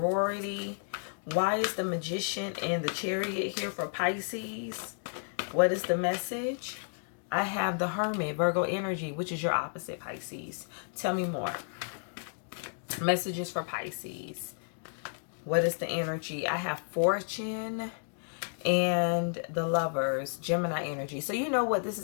Why is the Magician and the Chariot here for Pisces? What is the message? I have the Hermit, Virgo energy, which is your opposite, Pisces. Tell me more. Messages for Pisces. What is the energy? I have Fortune and the Lovers, Gemini energy. So you know what this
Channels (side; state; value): right; silent; digital silence